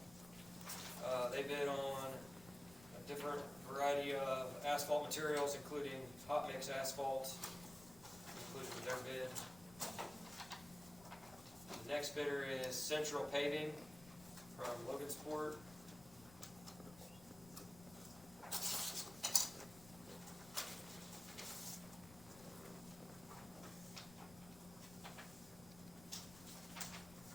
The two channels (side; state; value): left; noise; rumble, 19 dB below the sound